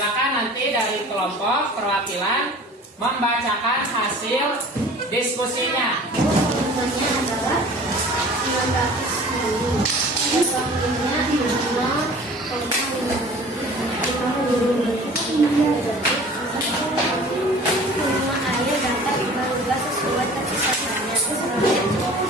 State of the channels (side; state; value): both; normal; correlation 0.45